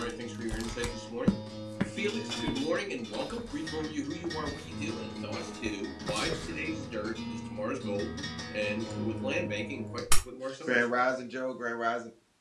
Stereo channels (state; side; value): identical; both; correlation 1.00